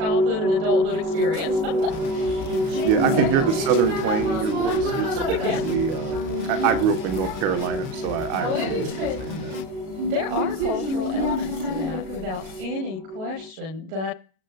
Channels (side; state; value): left; late; 37 ms